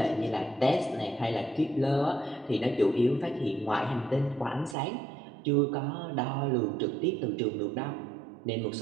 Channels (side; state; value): left; drops out; at 4.8 s